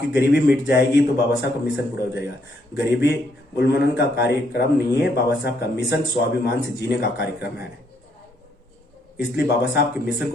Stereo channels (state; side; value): normal; both; correlation 0.72